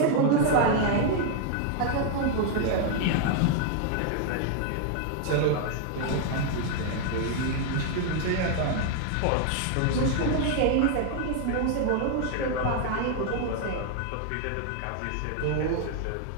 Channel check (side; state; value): both; different; correlation 0.00